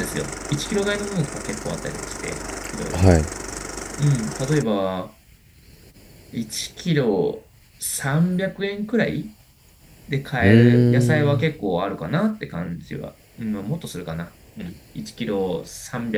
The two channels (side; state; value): both; identical; correlation 1.00